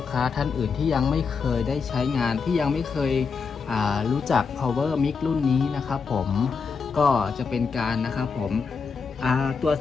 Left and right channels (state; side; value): quieter; right; 5.4 dB